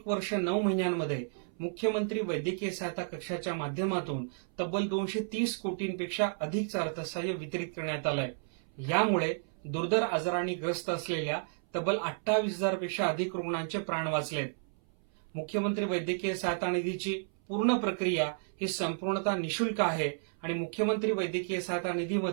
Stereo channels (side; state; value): left; silent; 56 dB below the other